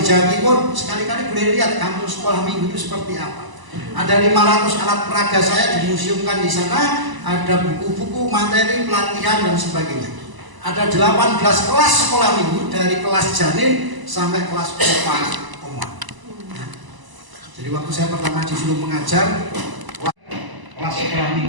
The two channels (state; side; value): late; left; 1.0 ms